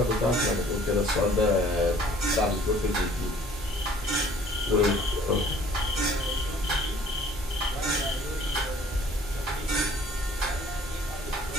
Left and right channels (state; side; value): normal; both; correlation 0.55